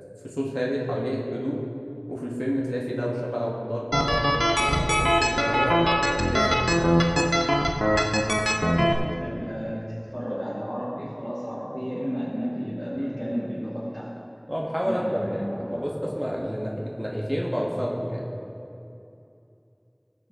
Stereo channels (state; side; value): identical; both; correlation 1.00